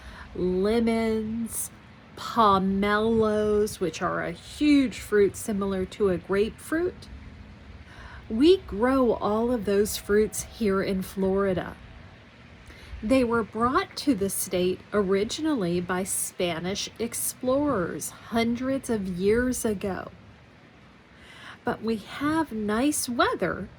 lemons, pomelos, which are a huge fruit similar to a grapefruit? We grow all of those fruits here in Florida. They were brought to the state originally by Spanish explorers hundreds of years ago. But we have nice weather,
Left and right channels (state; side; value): identical; both; correlation 1.00